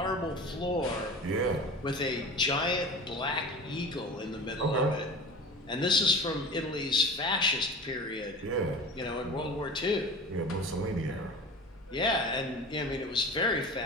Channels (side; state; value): both; normal; correlation 0.35